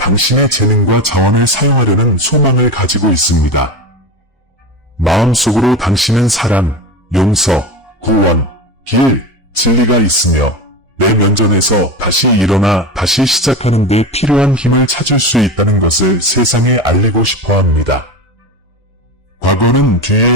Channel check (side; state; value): both; normal; correlation 0.24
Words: 재능과 자원을 사용하려는 소망을 가지고 있습니다. 마음속으로 당신은 사랑, 용서, 구원, 길, 진리가 있으며 내 면전에서 다시 일어나 다시 시작하는 데 필요한 힘을 찾을 수 있다는 것을 세상에 알리고 싶어 합니다. 과거는